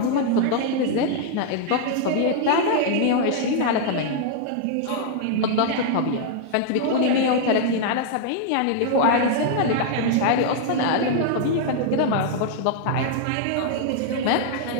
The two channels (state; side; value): different; both; correlation -0.01